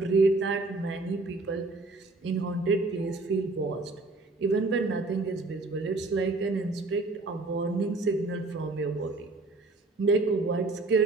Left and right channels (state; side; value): quieter; left; 3.3 dB